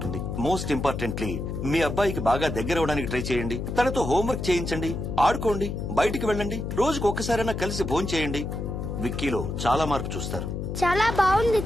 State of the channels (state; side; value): noise; left; hum, 4 dB below the sound